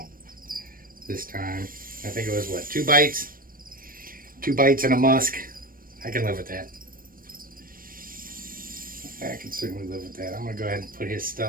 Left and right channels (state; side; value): late; left; 0.41 ms